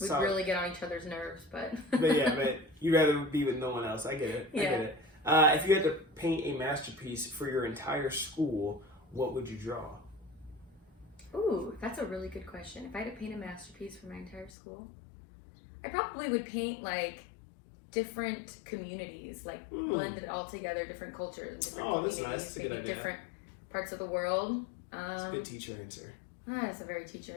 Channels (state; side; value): drops out; right; at 14.5 s